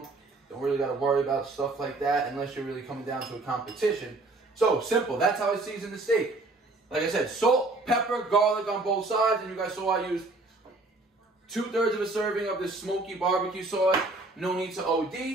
Don't really got to worry about stuff like that unless you're really coming down to a competition. So simple. That's how I season the steak. Like I said, salt, pepper, garlic on both sides. And you guys saw I used 2/3 of a serving of this smoky barbecue sauce. No need to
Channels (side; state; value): left; quieter; 3.1 dB